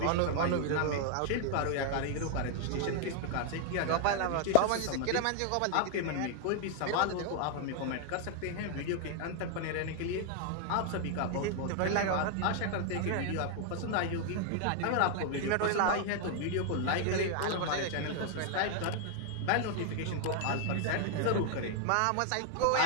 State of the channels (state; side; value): different; both; correlation 0.00